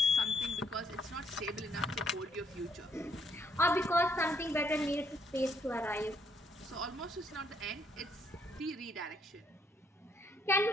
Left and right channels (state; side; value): normal; both; correlation 0.71